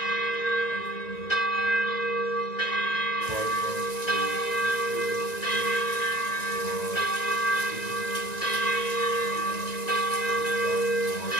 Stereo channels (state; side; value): late; right; 1.9 ms